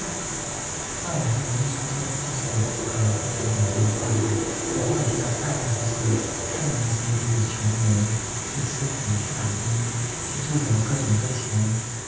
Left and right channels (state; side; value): identical; both; correlation 1.00